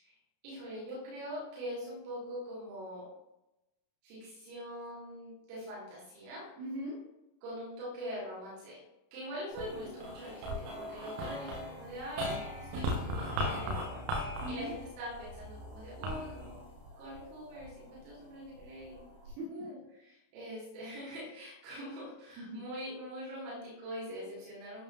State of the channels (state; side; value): late; left; 32 ms